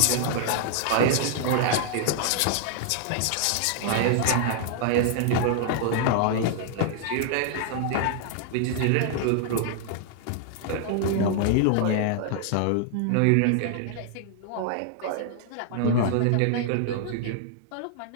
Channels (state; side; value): different; both; correlation -0.01